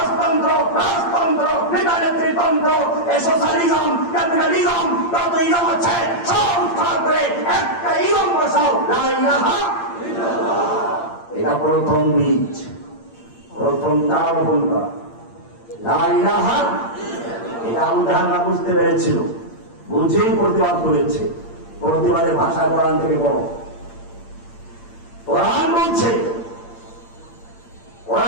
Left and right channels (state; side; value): late; right; 8.7 ms